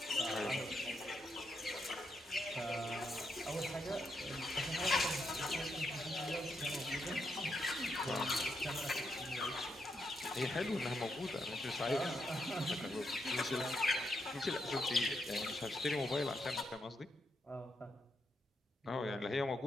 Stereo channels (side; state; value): both; normal; correlation 0.81